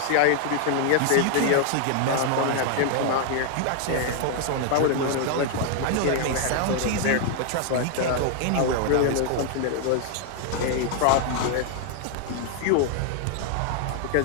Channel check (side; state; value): both; different; correlation 0.00